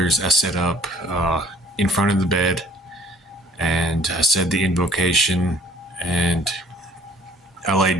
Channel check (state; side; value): normal; both; correlation 0.55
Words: I set up in front of the bed, and I said the invocation, and I